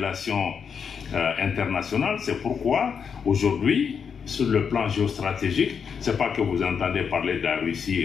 internationales. C'est pourquoi aujourd'hui, sur le plan géostratégique, ce n'est pas que vous entendez parler de la Russie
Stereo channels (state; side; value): quieter; right; 6.7 dB